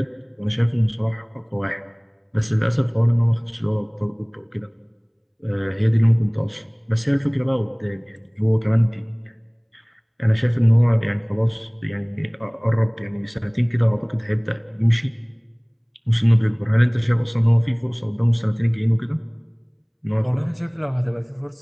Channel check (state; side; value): identical; both; correlation 1.00